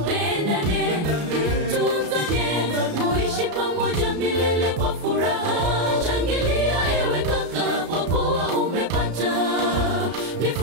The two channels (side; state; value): left; late; 34 ms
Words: tunzane, muishi pamoja milele kwa furaha. Shangilia ewe kaka, kwa kuwa umepata